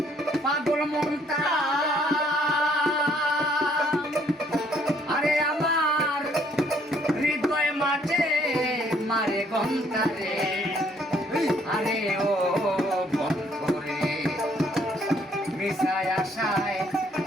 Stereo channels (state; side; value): normal; both; correlation 0.65